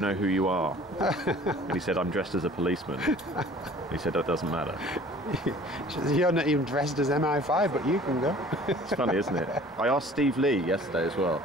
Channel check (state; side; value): normal; both; correlation 0.49